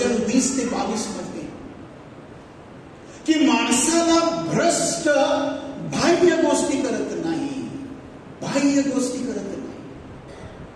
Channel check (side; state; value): both; identical; correlation 1.00